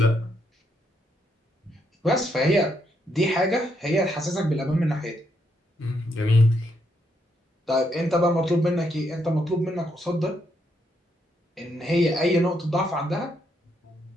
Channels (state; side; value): normal; both; correlation 0.77